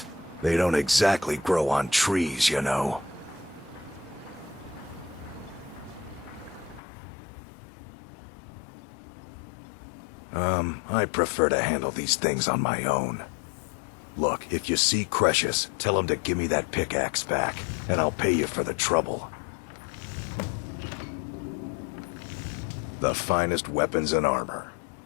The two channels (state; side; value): drops out; right; at 6.8 s